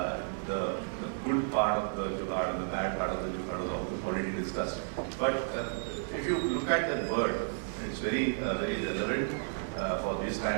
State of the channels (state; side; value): silent; left; digital silence